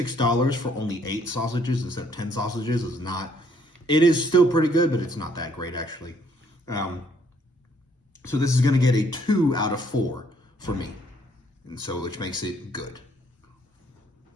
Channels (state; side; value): normal; both; correlation 0.66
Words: for only 8 sausages instead of 10 sausages is not. It is still pretty good, but it's not that great actually. So this is going to get a 2 out of 4 for me, and so which makes it good.